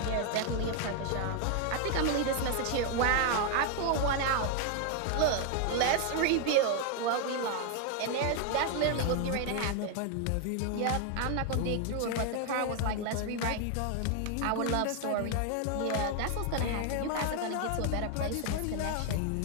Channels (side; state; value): both; different; correlation 0.00